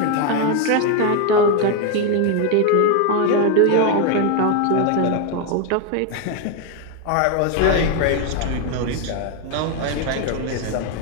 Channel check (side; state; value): both; different; correlation 0.01